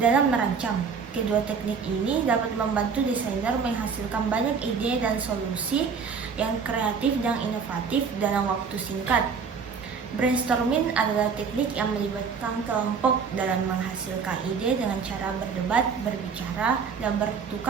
merancang. Kedua teknik ini dapat membantu desainer menghasilkan banyak ide dan solusi yang kreatif dan inovatif dalam waktu singkat. Brainstorming adalah teknik yang melibatkan kelompok dalam menghasilkan ide dengan cara berdebat, berbicara, dan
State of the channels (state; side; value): quieter; left; 5.8 dB